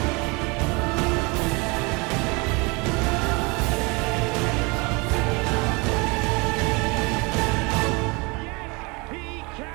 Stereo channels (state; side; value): quieter; left; 27.8 dB